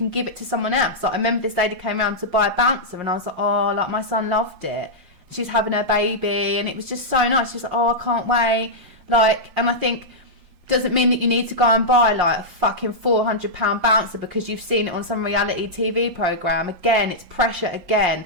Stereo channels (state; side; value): late; left; 5.6 ms